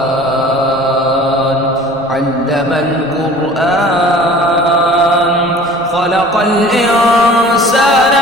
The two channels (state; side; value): noise; left; rumble, 28 dB below the sound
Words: علم القرآن خلق الإنسان